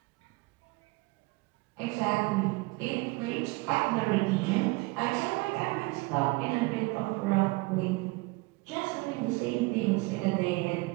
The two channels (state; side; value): quieter; left; 24.7 dB